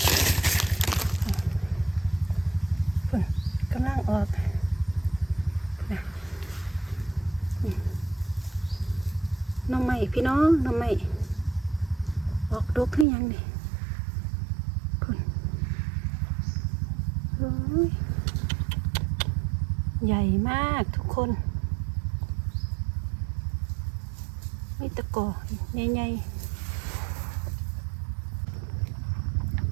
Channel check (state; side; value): drops out; left; at 13.1 s